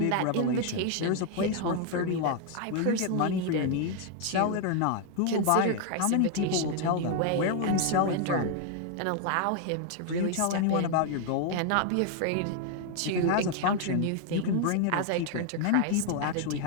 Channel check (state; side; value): different; both; correlation 0.00